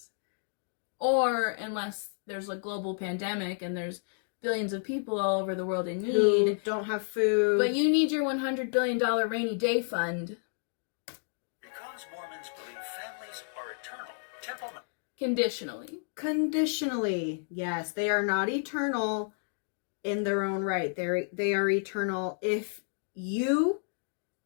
Or unless there's a global pandemic and there's billions of people all over the world in need. Who don't have food. But you need your $100 billion rainy day fund. Because Mormons believe families are eternal, temple... Conditionally. Yes, they are not eternal in their own right. They are eternal if you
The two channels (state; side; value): silent; right; digital silence